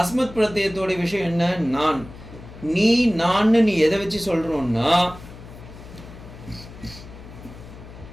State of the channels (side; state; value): left; noise; hum, 16 dB below the sound